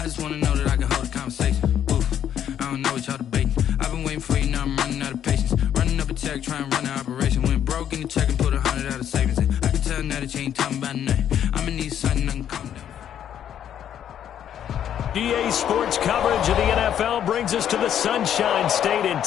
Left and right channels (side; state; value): right; quieter; 9.9 dB